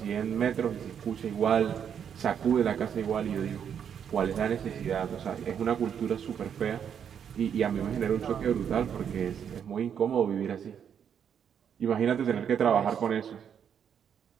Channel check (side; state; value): left; quieter; 8.2 dB